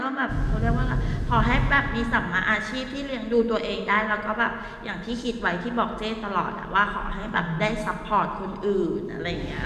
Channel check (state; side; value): identical; both; correlation 1.00